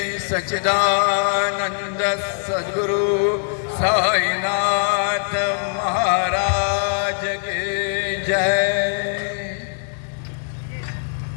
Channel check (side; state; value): right; silent; digital silence